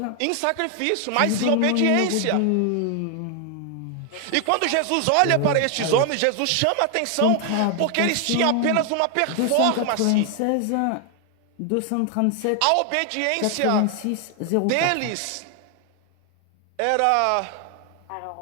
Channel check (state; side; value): different; both; correlation 0.00